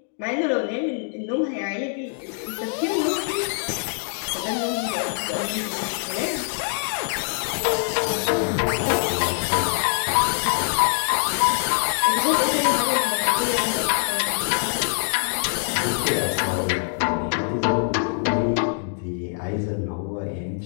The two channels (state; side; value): silent; right; 63 dB below the other